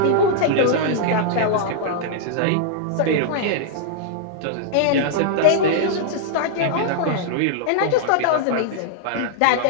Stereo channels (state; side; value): different; both; correlation -0.01